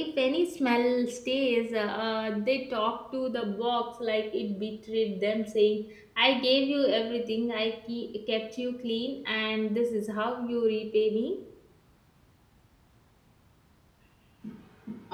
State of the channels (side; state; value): both; identical; correlation 1.00